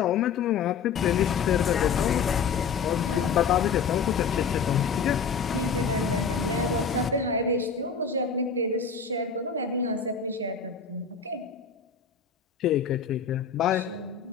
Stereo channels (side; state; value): right; quieter; 6.1 dB